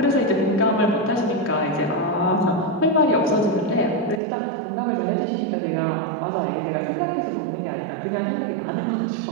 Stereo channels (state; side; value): drops out; left; at 4.2 s